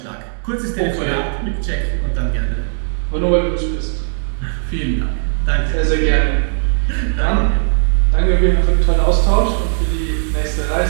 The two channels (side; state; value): left; silent; digital silence